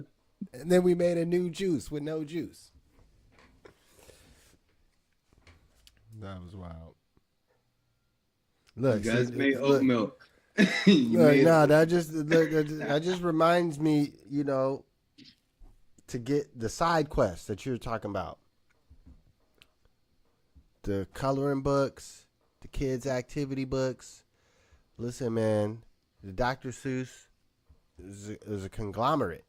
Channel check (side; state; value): both; identical; correlation 1.00